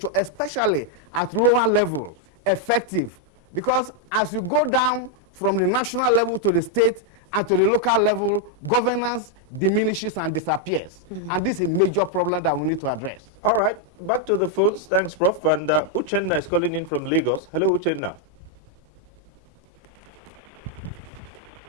especially at lower level, effective. Because as you go down from the national level to the state and to the local level, governance diminishes and disappears. And this is a major problem that we need to address. All right, back to the phones. Thanks, Prof. And Uchenna is calling in from Lagos. Hello, Uchenna.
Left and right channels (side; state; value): both; normal; correlation 0.00